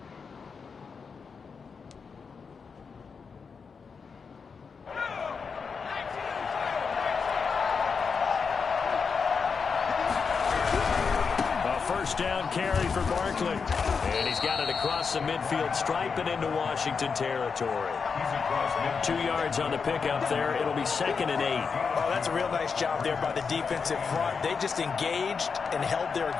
Down carry for Barkley. And he's got it across the midfield stripe and into Washington territory. 2 yards on the pickup there. It'll be 2nd and 8. Oh, that's a real nice job there by the defensive front. They just engaged and held their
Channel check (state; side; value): quieter; right; 5.5 dB